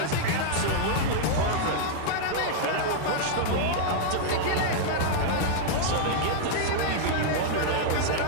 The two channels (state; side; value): different; both; correlation -0.01